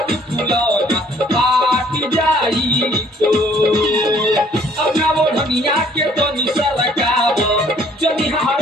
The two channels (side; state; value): both; normal; correlation 0.60